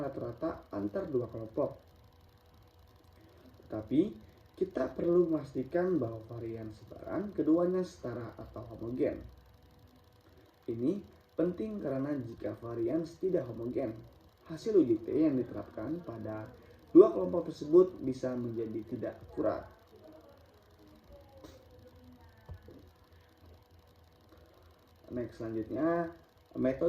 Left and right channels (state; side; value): identical; both; correlation 1.00